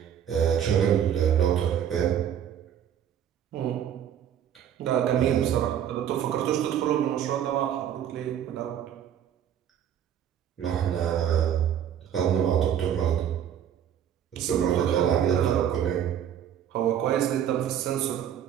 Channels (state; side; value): quieter; left; 9.6 dB